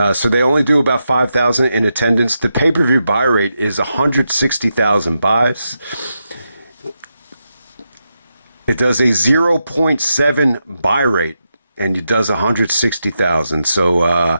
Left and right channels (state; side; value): inverted; both; correlation -0.86